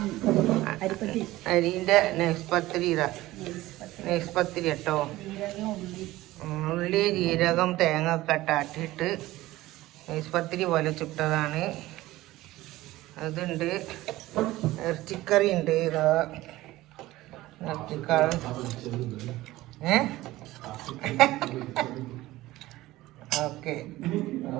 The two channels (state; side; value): quieter; left; 17.3 dB